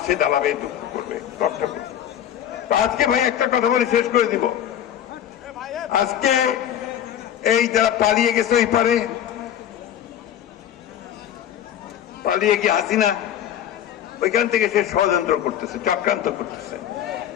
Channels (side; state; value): right; quieter; 10.4 dB